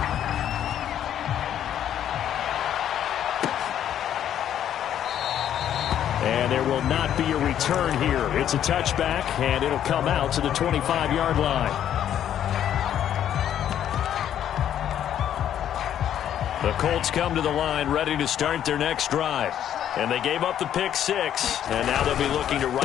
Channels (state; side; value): quieter; right; 10.4 dB